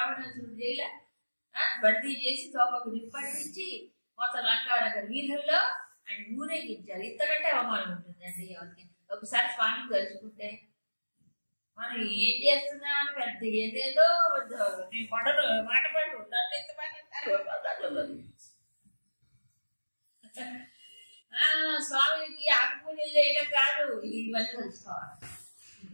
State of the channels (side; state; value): both; inverted; correlation -1.00